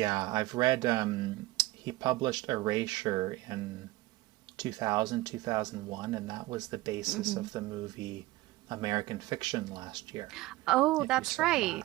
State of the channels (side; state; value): left; quieter; 19.0 dB